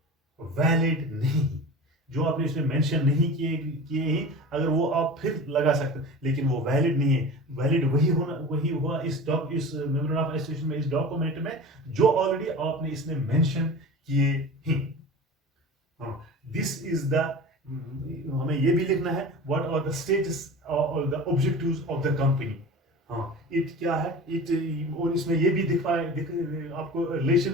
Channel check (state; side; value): normal; both; correlation 0.34